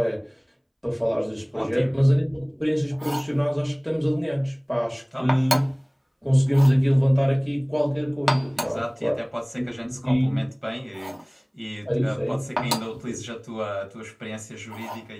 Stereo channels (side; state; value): both; identical; correlation 1.00